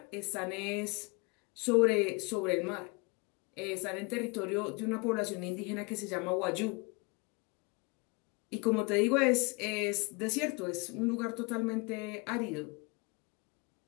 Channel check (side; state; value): right; quieter; 29.4 dB